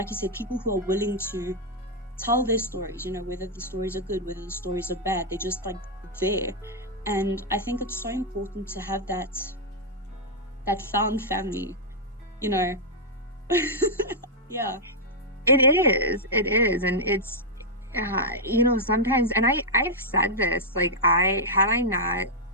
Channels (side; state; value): both; normal; correlation -0.05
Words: you said, people who are willing to tell their stories, whether the stories are good, whether the stories are bad, they're just like there. And I think it's so important to have that found family, yeah. It is. And it's, sometimes, and I've said this, like, had I not